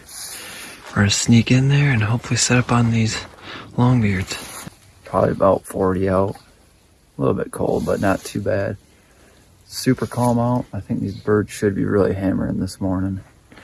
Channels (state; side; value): identical; both; correlation 1.00